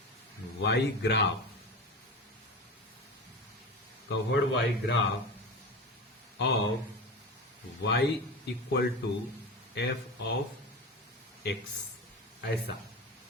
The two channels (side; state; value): both; normal; correlation 0.27